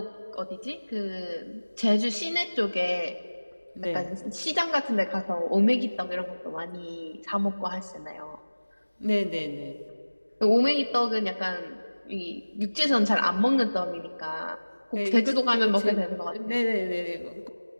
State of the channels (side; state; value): both; inverted; correlation -1.00